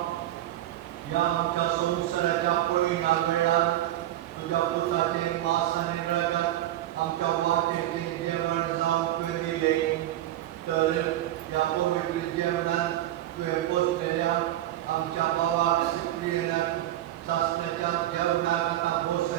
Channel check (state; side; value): quieter; left; 13.7 dB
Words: या आमच्या संवत्सराच्या पळयणाक वेळार तुझ्या पुताचे वास आनी रगत आमच्या वाटेचे जेवण जावंक तुवें दिलें, तर या पवित्र जेवणात तुवें बसलेल्या आमच्या भावाक सिप्रियनाक सासण्याच्या जेवणाक आतां